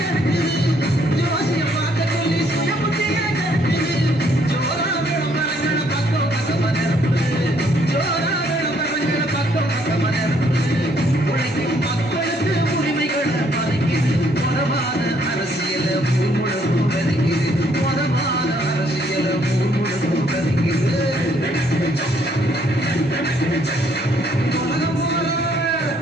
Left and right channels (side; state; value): both; normal; correlation 0.67